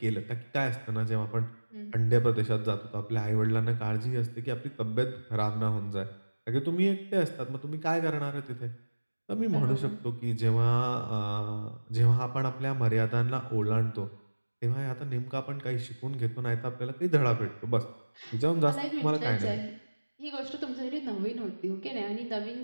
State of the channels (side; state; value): both; inverted; correlation -1.00